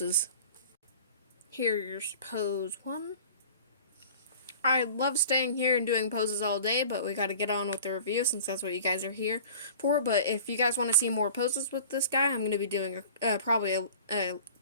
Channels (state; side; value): inverted; both; correlation -0.44